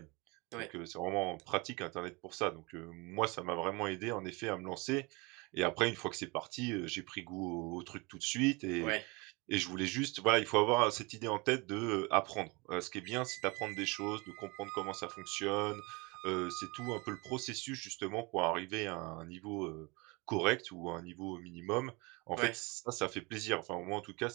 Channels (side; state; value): left; quieter; 26.8 dB